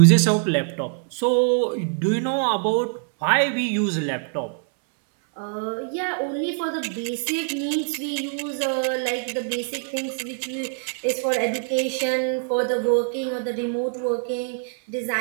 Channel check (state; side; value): silent; left; 63 dB below the other